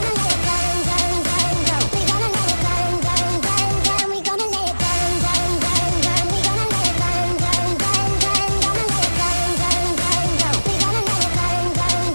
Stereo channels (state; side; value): inverted; both; correlation -1.00